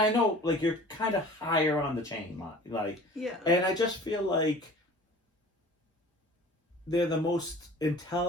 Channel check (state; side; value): normal; both; correlation 0.44